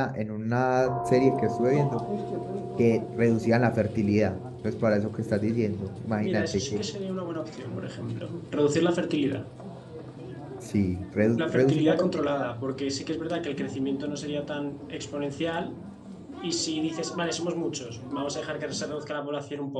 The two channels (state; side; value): identical; both; correlation 1.00